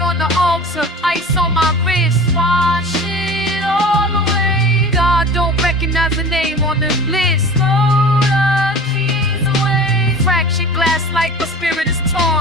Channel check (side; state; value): both; normal; correlation 0.39